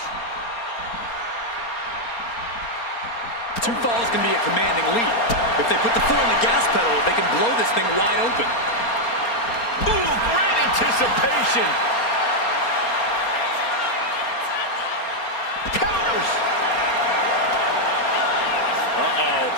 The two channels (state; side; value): late; right; 4.3 ms